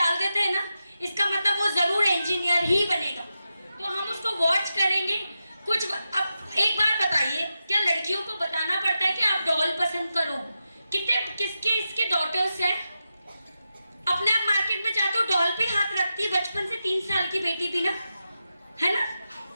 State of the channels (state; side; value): inverted; both; correlation -0.89